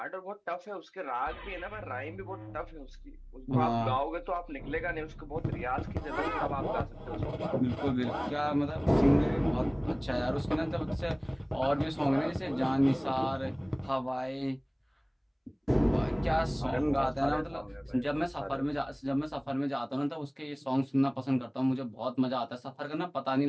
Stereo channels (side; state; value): both; identical; correlation 1.00